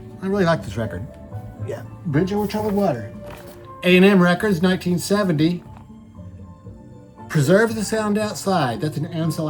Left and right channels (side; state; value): both; identical; correlation 1.00